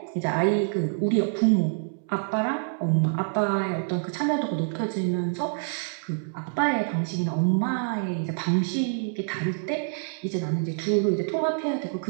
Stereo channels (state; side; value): silent; left; 61 dB below the other